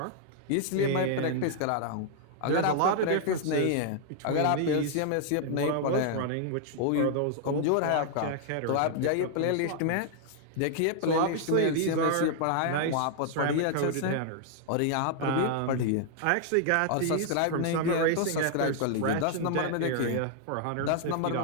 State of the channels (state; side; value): different; both; correlation -0.01